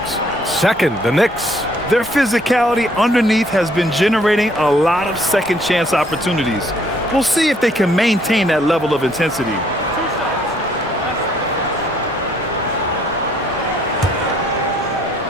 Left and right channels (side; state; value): both; normal; correlation 0.64